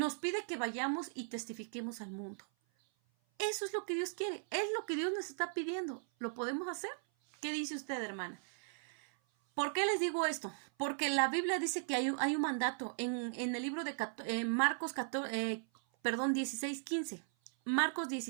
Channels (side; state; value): left; silent; 53 dB below the other